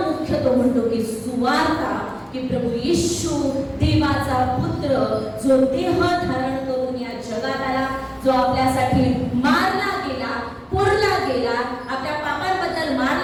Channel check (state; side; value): identical; both; correlation 1.00